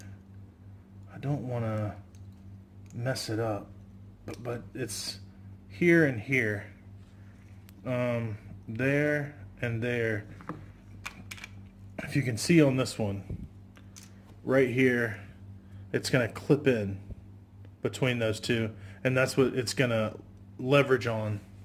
I don't want to mess it up, but it's here and here. There and there. If you can see on this one, right here, it's going to clip in between those two, and that's what it's going to leverage on.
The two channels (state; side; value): identical; both; correlation 1.00